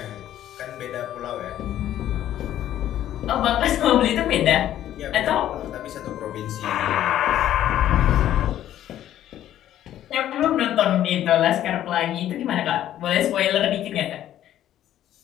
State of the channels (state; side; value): quieter; right; 12.0 dB